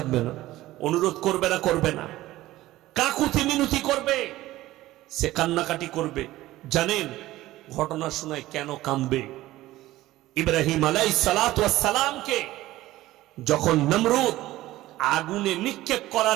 না? অনুরোধ করবে না করবে না? কাকুতি মিনতি করবে, সে কান্নাকাটি করবে। জানেন ঘটনা শোনায় কেন কাঁদবে? ইব্রাহিম আলাইহিস সালাতু ওয়াস সালামকে যখন নমরুদ আগুনে নিক্ষেপ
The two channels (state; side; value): quieter; left; 16.4 dB